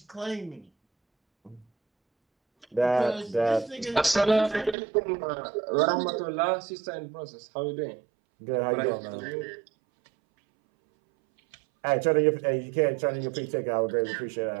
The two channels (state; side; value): drops out; left; at 4.8 s